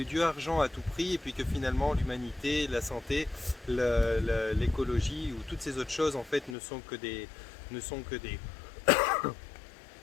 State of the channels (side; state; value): right; drops out; at 6.6 s